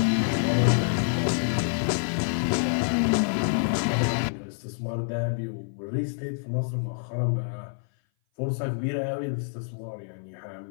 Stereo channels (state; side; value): silent; right; 57 dB below the other